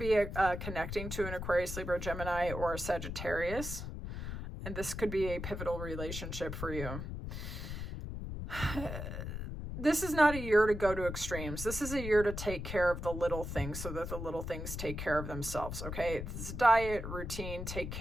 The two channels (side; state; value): left; noise; rumble, 6 dB below the sound